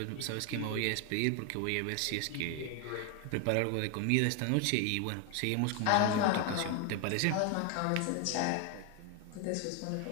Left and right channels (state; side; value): different; both; correlation 0.01